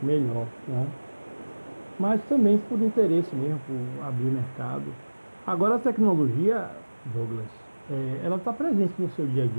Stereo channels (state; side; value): inverted; both; correlation -1.00